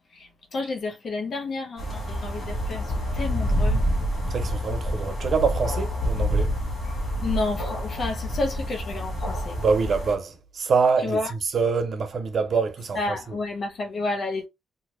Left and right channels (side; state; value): both; normal; correlation 0.78